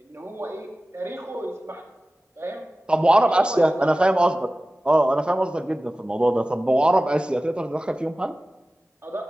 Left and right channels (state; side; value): normal; both; correlation 0.96